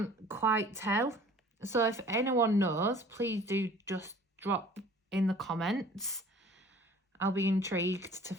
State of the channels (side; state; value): both; normal; correlation 0.50